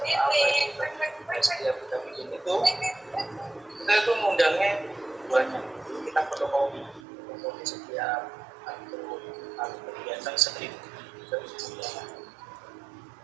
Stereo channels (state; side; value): drops out; left; at 7.0 s